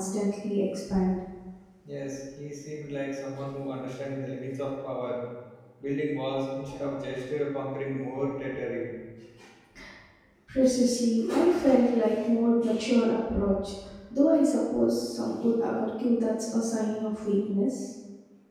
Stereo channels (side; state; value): both; identical; correlation 1.00